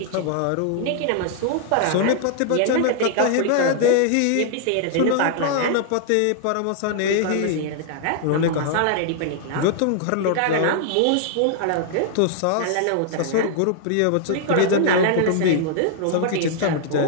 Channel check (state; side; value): different; both; correlation -0.01